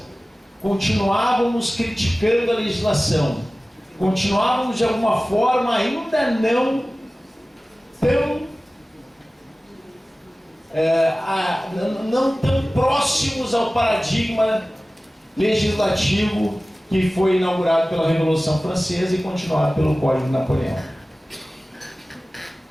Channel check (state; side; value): normal; both; correlation 0.97